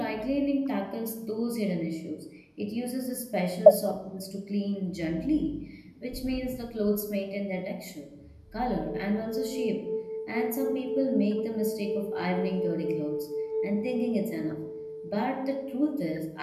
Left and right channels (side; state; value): both; identical; correlation 1.00